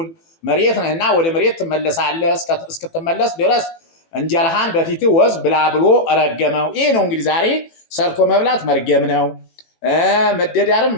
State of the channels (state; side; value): late; right; 18 ms